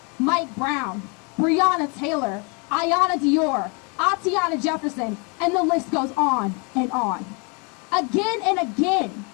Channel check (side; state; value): right; quieter; 33.6 dB